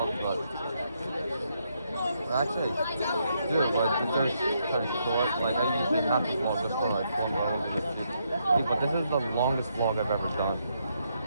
but actually do but there's kind of short. Like I usually have to vlog just for like 4 hours. But this is the longest vlog I've ever done.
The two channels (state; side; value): inverted; both; correlation -0.77